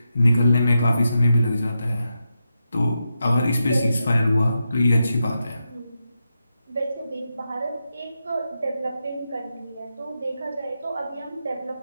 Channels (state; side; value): inverted; both; correlation -0.88